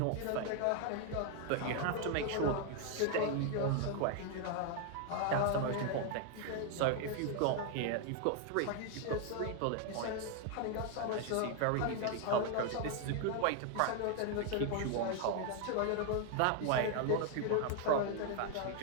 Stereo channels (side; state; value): both; different; correlation 0.00